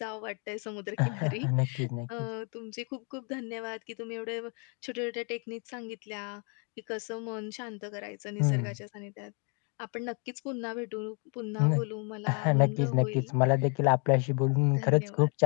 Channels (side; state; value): right; quieter; 38.2 dB